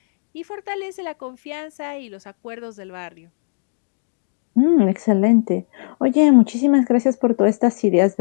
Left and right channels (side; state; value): right; silent; 66 dB below the other